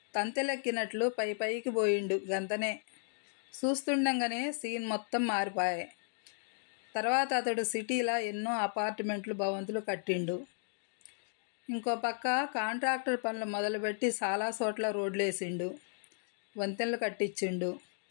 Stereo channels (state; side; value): silent; right; digital silence